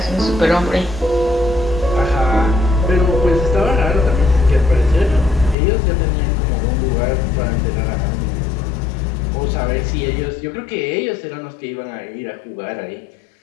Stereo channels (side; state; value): right; drops out; at 5.6 s